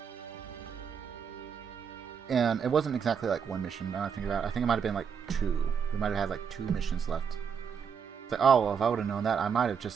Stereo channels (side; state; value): left; quieter; 6.9 dB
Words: And it wasn't exactly like one mission, now I think about it. I think it might have been like 2. We might have had like 2 missions left. It's like, oh, well, if I would have known that, I might have